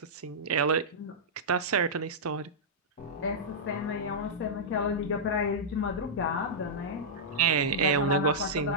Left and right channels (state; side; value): normal; both; correlation -0.11